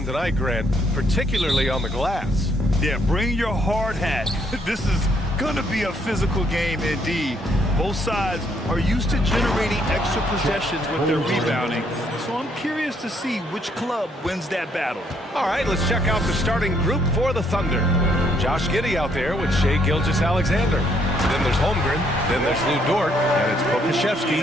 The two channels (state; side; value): normal; both; correlation 0.70